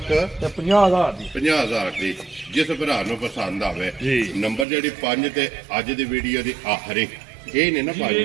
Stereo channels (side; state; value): left; drops out; at 4.7 s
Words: ਤੇ 50,000 ਦੀ 50,000 ਦੀ ਜਿਸ ਭਰਾ ਨੂੰ ਪਸੰਦ ਆਵੇ ਨੰਬਰ ਜਿਹੜੀ 5 ਤੇ ਅੱਜ ਦੀ ਵੀਡੀਓ ਦੀ ਆਖਰੀ ਇਹ ਨੇ ਨਾ